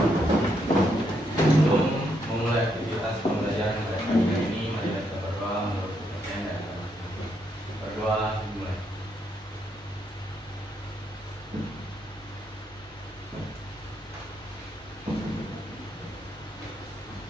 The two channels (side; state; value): both; normal; correlation 0.77